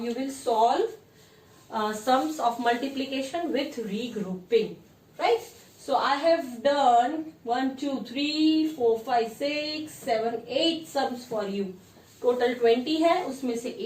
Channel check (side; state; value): both; identical; correlation 1.00